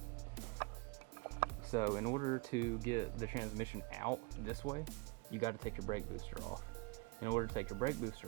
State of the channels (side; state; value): left; quieter; 27.3 dB